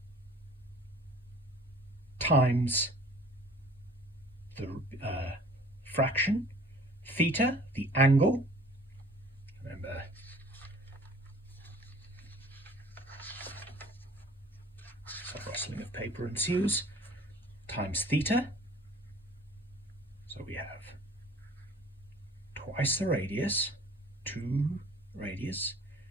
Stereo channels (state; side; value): normal; both; correlation 0.50